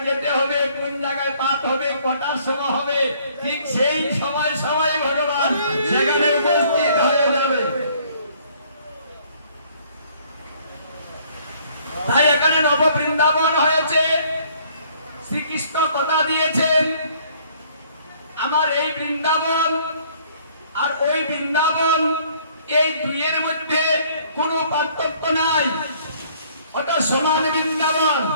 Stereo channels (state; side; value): inverted; both; correlation -0.60